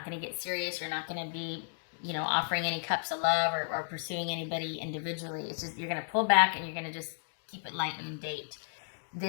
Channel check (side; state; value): right; silent; digital silence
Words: going to get serious. You're not going to be, offering any cups of love or pursuing anybody individually. It's just, you're going to pull back and you're going to just keep it light and date.